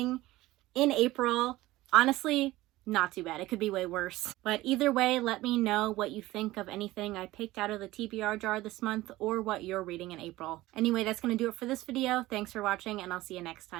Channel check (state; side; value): quieter; left; 17.7 dB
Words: in April. Honestly, not too bad. It could be way worse. But either way, let me know what you think of anything I picked out of the TBR jar this month, or what you're reading in April. Anyway, that's going to do it for this video. Thanks for watching, and I'll see you next